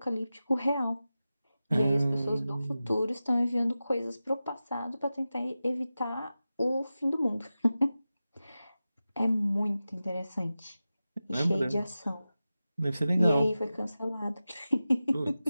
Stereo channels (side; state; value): both; inverted; correlation -0.94